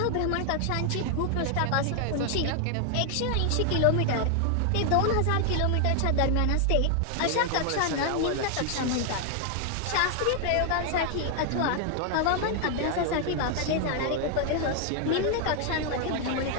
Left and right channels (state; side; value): different; both; correlation 0.00